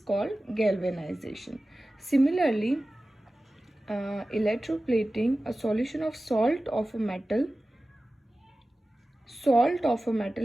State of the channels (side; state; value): both; normal; correlation 0.96